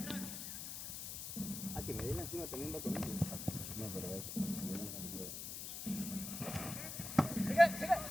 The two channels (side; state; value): left; noise; hiss, 6 dB below the sound